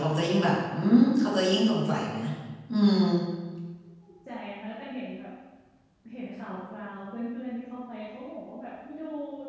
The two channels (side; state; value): both; identical; correlation 1.00